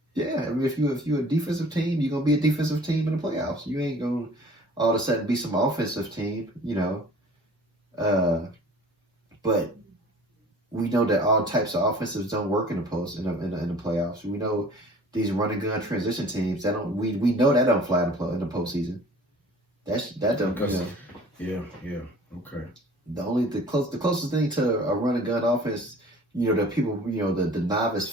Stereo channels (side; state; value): both; normal; correlation 0.48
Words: Yeah, I mean, if you're a defensive team, you're gonna be a defensive team in the playoffs. You ain't gonna all of a sudden be some offensive team, you know. But we know that all types of offensives don't work in the playoffs. We know these run and gun transition teams that don't. We know that don't fly in the postseason. That don't. Yeah. Okay. The closest thing to a run and gun offense, you know, that people, you know, the novice